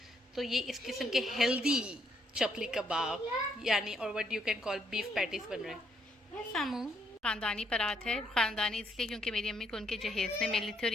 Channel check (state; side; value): normal; both; correlation 0.73